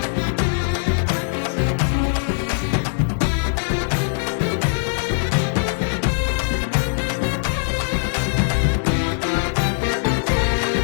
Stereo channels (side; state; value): right; silent; digital silence